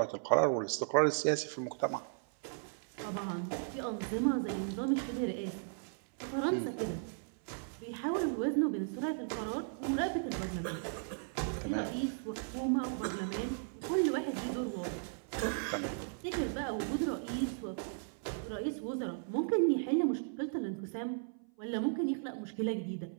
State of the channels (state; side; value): silent; left; 54 dB below the other